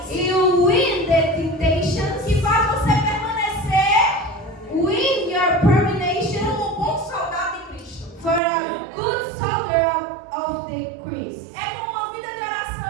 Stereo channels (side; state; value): left; drops out; at 8.4 s